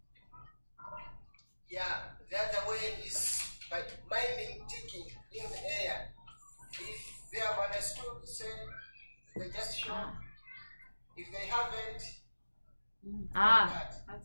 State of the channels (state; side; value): inverted; both; correlation -1.00